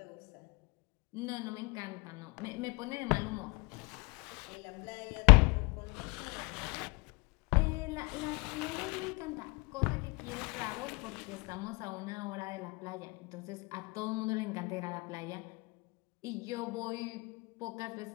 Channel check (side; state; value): right; quieter; 28.0 dB